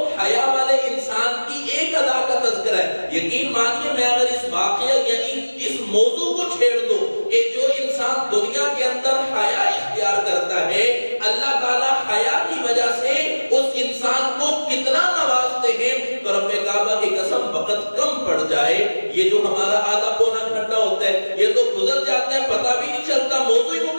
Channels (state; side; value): inverted; both; correlation -1.00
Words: حیا والے انسان کی ایک ادا کا تذکرہ ہے. یقین مانیے میں اگر اس واقعہ یعنی اس موضوع کو چھیڑ دوں کہ جو انسان دنیا کے اندر حیا اختیار کرتا ہے, اللہ تعالیٰ حیا کی وجہ سے اس انسان کو کتنا نوازتے ہیں. تو رب کعبہ کی قسم وقت کم پڑ جائے, یہ جو ہمارا آدھا پونا گھنٹہ ہوتا ہے یہ تو گزر جاتا ہے, پتہ بھی نہیں چلتا, موضوع ہی